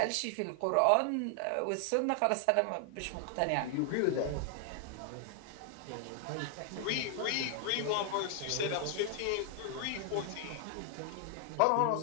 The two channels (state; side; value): different; both; correlation 0.00